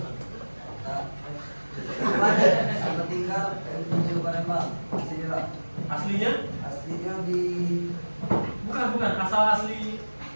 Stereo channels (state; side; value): inverted; both; correlation -1.00